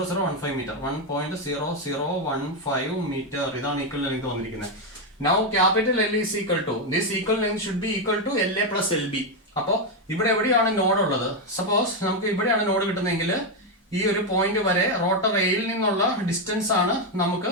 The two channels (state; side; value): normal; both; correlation 0.05